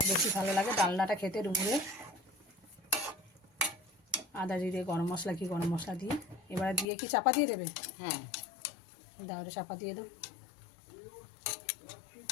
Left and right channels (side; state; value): right; drops out; at 6.9 s